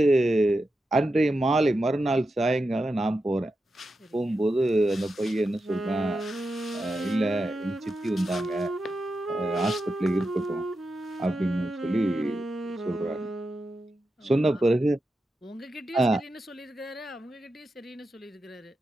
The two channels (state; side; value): normal; both; correlation 0.89